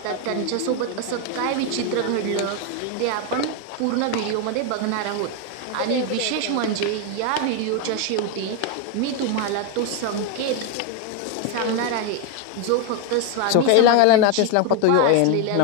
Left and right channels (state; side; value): different; both; correlation 0.01